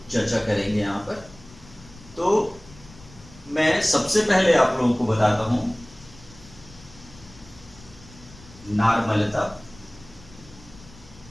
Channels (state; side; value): noise; left; rumble, 22 dB below the sound